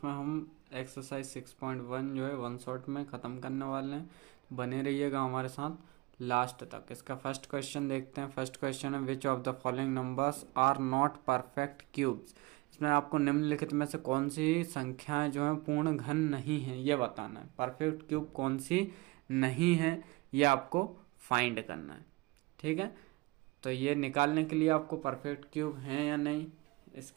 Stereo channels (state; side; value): quieter; left; 23.1 dB